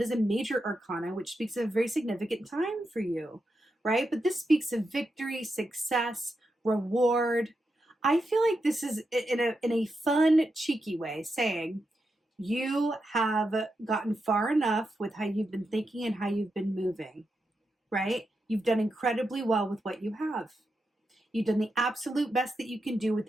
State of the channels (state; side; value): normal; both; correlation 0.86